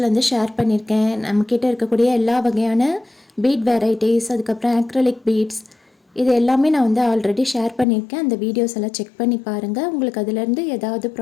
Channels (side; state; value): right; drops out; at 7.9 s